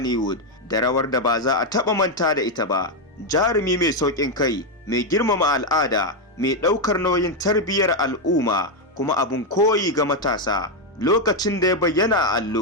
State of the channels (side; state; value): both; normal; correlation 0.04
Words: da rawar da ba za a taɓa manta da ita ba. Jarumi mai sauƙin kai, mai girmama al'ada, mai ɗaukar nauyin tarbiyyar al'umma, kuma abun koyi ga matasa. Lokacin da ya bayyana a